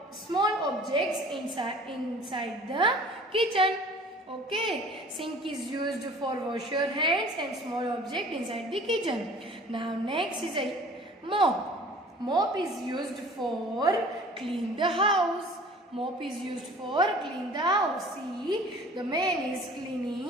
objects inside the kitchen. Okay, sink is used for wash your hands and small object inside the kitchen. Now next is a mop. Mop is used for clean the house. Mop is used for clean the house. See, the man is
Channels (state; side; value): normal; both; correlation 0.47